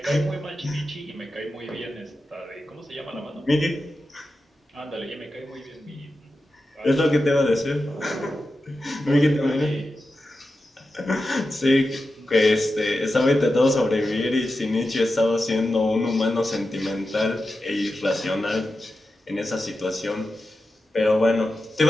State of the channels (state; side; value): normal; both; correlation 0.91